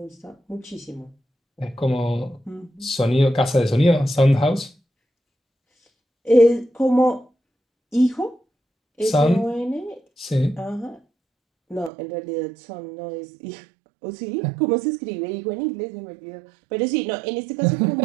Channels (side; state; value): left; drops out; at 11.9 s